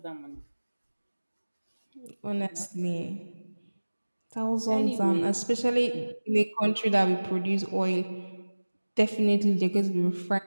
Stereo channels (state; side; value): inverted; both; correlation -1.00